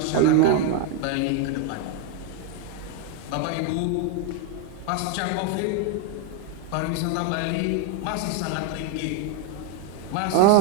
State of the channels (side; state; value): both; different; correlation 0.01